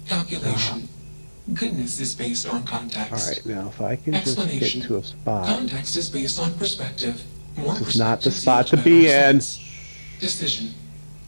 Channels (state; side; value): inverted; both; correlation -1.00